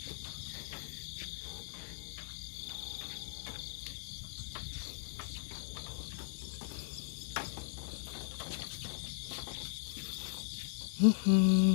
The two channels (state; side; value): silent; right; digital silence